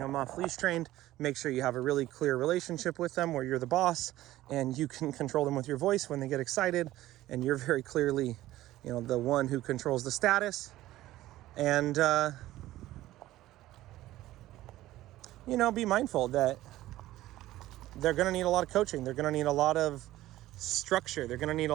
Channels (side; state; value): left; quieter; 15.4 dB